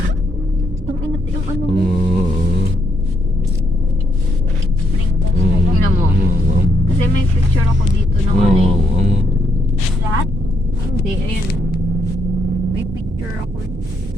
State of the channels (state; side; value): normal; both; correlation 0.75